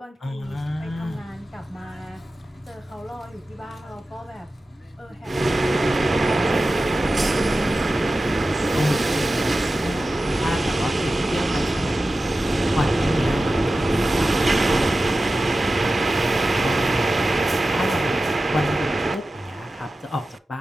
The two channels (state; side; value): normal; both; correlation 0.94